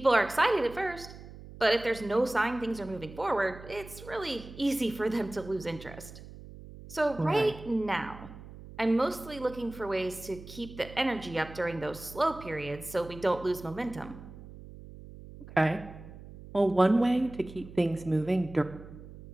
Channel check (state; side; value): noise; right; hum, 16 dB below the sound